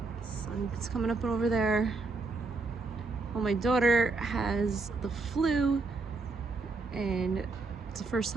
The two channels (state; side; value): quieter; left; 3.7 dB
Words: Sun's coming up over there. Well, my daughter has the flu, and it's the first